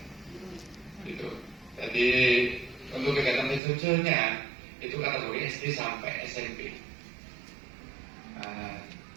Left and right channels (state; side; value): drops out; left; at 3.6 s